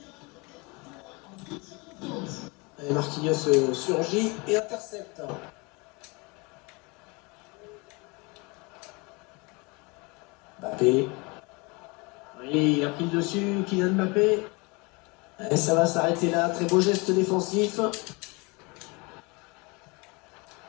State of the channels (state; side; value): quieter; right; 27.7 dB